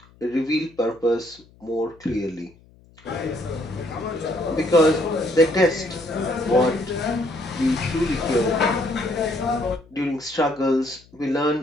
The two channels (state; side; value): noise; left; hum, 28 dB below the sound